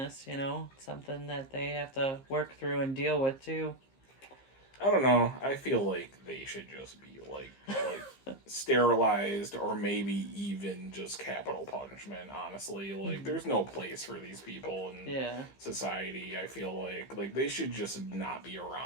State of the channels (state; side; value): late; right; 15 ms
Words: you know, something that they have to work through and deal with too. I don't know. I feel like they should just be sterilized or maybe even just capital punishment, honestly. Like there's no place for these people in Yeah. society. I feel like they should just not be